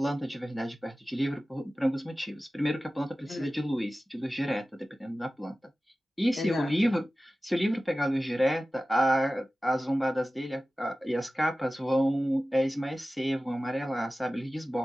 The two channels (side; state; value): both; normal; correlation 0.96